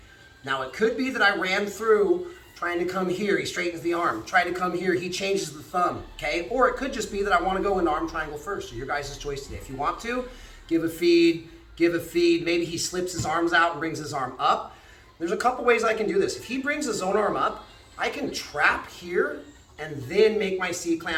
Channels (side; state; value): both; identical; correlation 1.00